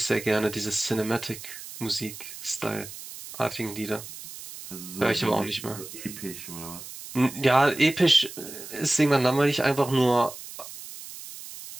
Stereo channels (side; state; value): right; noise; hiss, 13 dB below the sound